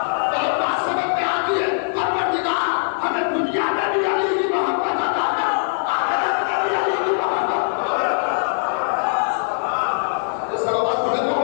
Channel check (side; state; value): right; silent; digital silence